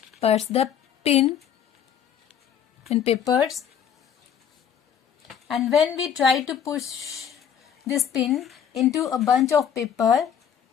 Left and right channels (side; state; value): right; quieter; 8.5 dB